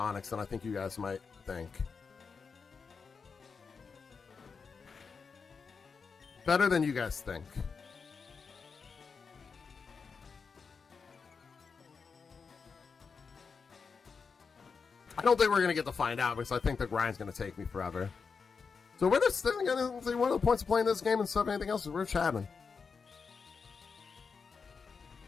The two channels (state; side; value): quieter; right; 5.4 dB